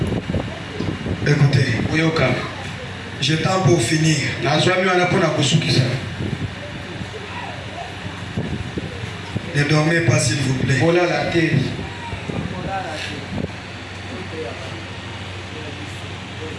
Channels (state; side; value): identical; both; correlation 1.00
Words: Écoutez, Uyoka. j'ai temps pour finir. Ne dormez pas s'il vous plaît. Voilà la terre.